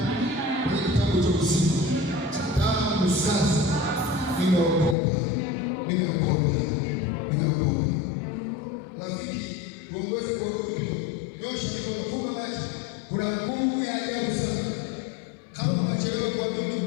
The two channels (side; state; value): right; drops out; at 5.0 s